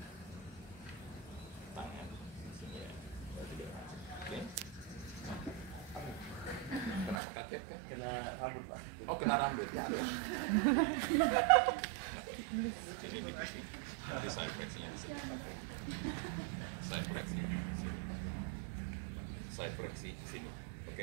Tangan sini ya. Berarti dia masuk. Oke. Kenapa kaget kan? Kena rambut, Pak. Oh, kena rambut. Ya. Sini di sini. Nanti side flexinya di sini. Side flexi di sini. Side flexi di sini.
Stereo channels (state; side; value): drops out; left; at 7.2 s